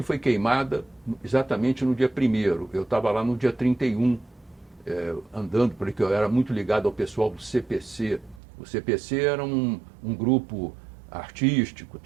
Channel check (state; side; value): drops out; left; at 8.4 s